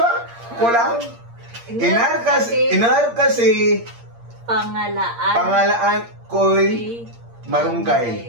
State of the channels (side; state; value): left; late; 8.6 ms